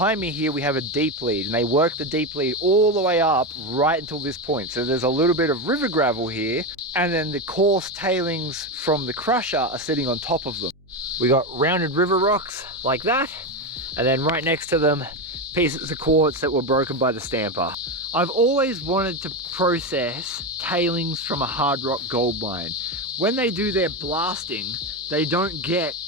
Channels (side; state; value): both; normal; correlation 0.14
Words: me here we have a deep lead, and they worked the deep lead all the way up right until this point. So there's a little bit of river gravel here, and then the coarse tailings from the crusher are sitting on top of them. We got rounded river rocks like that, and then right next to them pieces of quartz that were broken by the stamper. I've always wanted to process tailings from a hard rock gold mine. When they do their blasting, they don't get